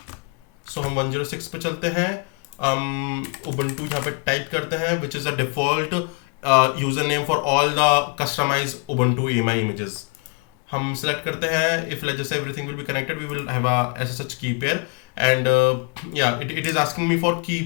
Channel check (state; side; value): quieter; right; 36.5 dB